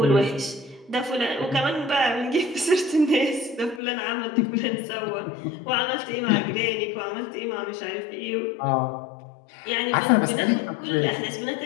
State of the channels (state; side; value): drops out; right; at 3.8 s